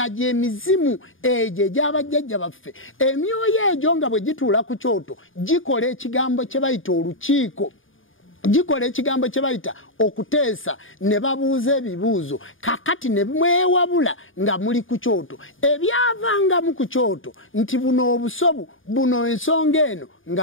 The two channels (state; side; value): late; right; 0.58 ms